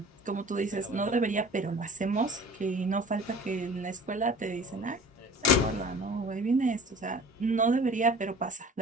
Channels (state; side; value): normal; both; correlation 0.45